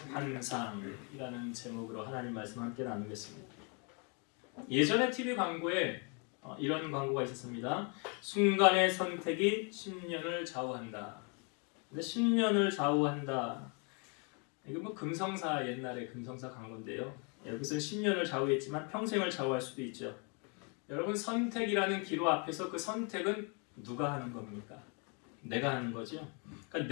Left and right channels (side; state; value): right; quieter; 35.4 dB